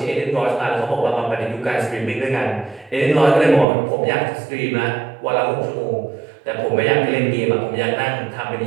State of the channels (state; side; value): drops out; left; at 3.7 s